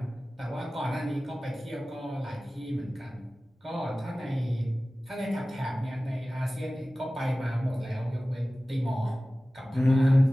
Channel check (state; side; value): normal; both; correlation 0.97